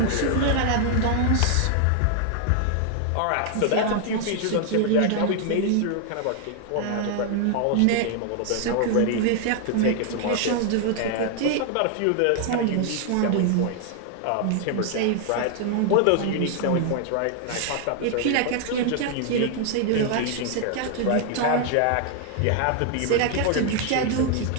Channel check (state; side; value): different; both; correlation 0.00